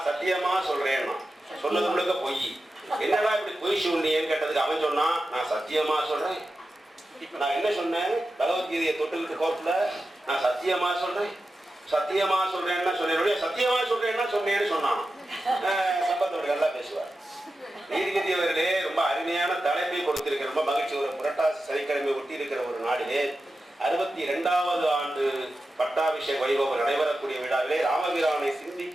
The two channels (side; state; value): both; normal; correlation 0.92